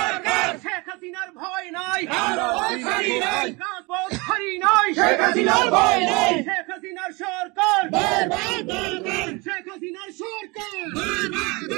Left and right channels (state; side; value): quieter; left; 26.6 dB